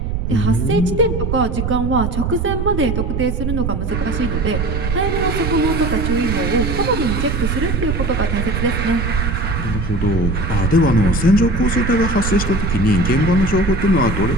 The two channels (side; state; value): right; noise; rumble, 1 dB below the sound